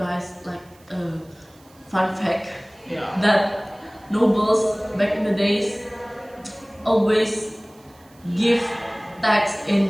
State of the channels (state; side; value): noise; right; hiss, 29 dB below the sound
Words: like a fun fact Yeah. that nobles back in the days always give tax in